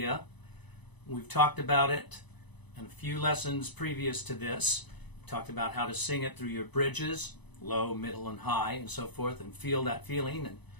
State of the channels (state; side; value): late; right; 1.0 ms